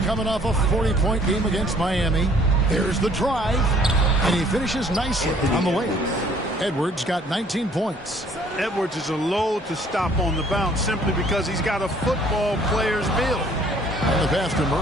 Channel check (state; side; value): normal; both; correlation 0.58